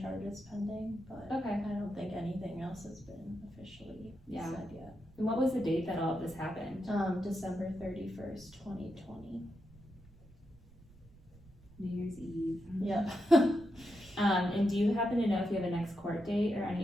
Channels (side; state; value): right; noise; rumble, 24 dB below the sound